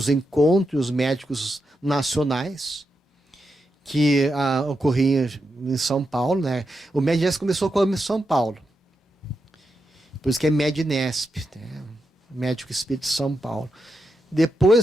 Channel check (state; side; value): normal; both; correlation 0.86